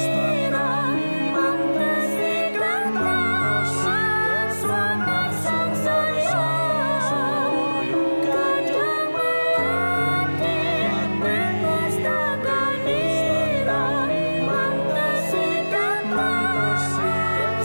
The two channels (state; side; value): inverted; both; correlation -1.00